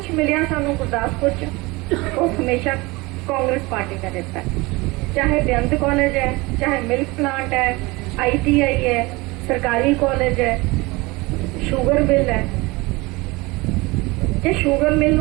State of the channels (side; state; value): left; quieter; 23.4 dB